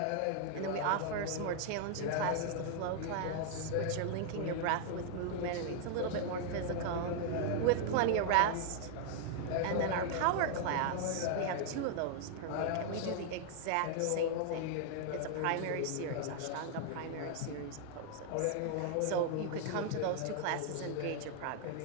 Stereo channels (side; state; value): both; different; correlation 0.00